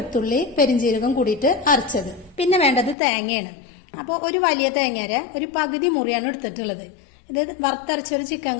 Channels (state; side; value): drops out; right; at 3.0 s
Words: പെരിഞ്ജീരകം കൂടിയിട്ട് അരച്ചത്. പിന്നെ വേണ്ടത് തേങ്ങയാണ്. അപ്പോൾ ഒരു വലിയ തേങ്ങയുടെ ഒരു പകുതി മുറിയാണ് എടുത്തിട്ടുള്ളത്. ഇത് വറുത്തരച്ചൊരു ചിക്കൻ